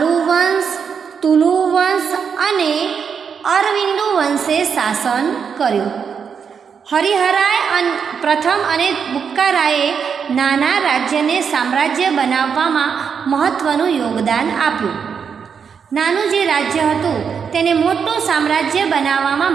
વંશ, તુલુ વંશ અને અરવિંદુ વંશે શાસન કર્યું। હરિહરાય પ્રથમ અને બુક્કારાયે નાના રાજ્યને સામ્રાજ્ય બનાવવામાં મહત્ત્વનું યોગદાન આપ્યું। નાનું જે રાજ્ય હતું તેને મોટું સામ્રાજ્ય બનાવવામાં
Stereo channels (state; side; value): quieter; left; 6.6 dB